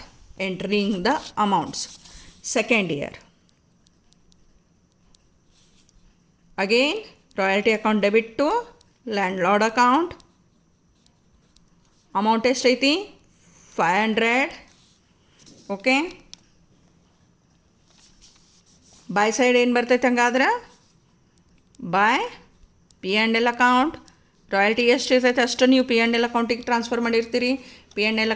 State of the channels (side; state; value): both; identical; correlation 1.00